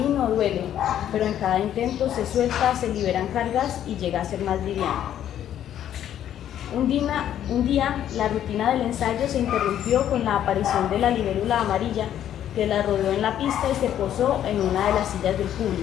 duele, pero en cada intento se suelta, se liberan cargas y llega a ser más liviano. Un día, la rutina del ensayo se interrumpió con la aparición de la libélula amarilla, que la rodeó en la pista y se posó en una de las sillas del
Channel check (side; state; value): right; quieter; 10.8 dB